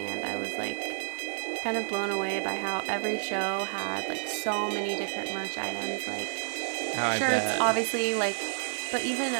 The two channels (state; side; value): silent; left; digital silence